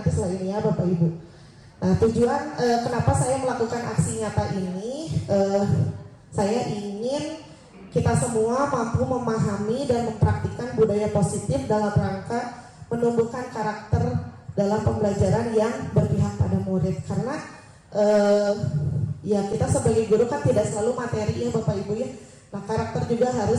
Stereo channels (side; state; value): both; identical; correlation 1.00